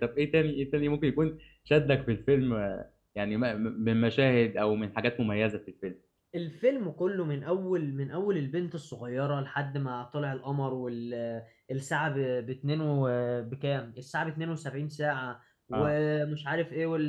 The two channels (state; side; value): identical; both; correlation 1.00